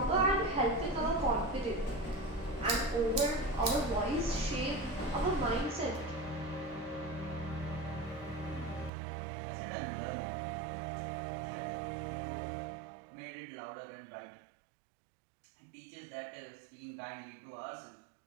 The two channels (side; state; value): left; drops out; at 8.9 s